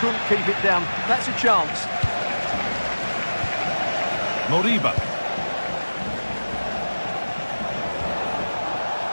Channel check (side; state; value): both; inverted; correlation -1.00